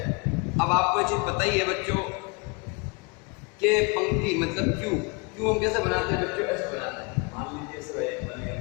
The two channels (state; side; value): quieter; right; 30.6 dB